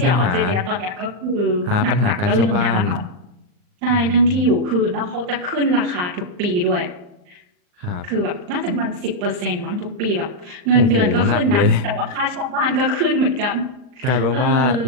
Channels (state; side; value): late; left; 39 ms